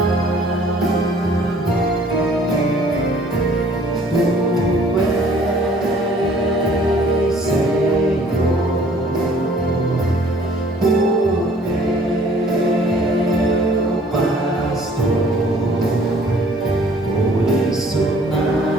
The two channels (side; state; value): both; normal; correlation 0.56